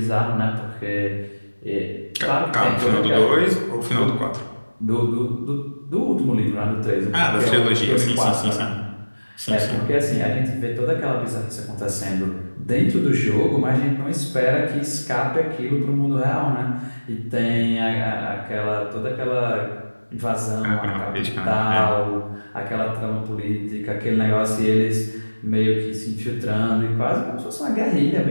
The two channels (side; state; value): both; inverted; correlation -1.00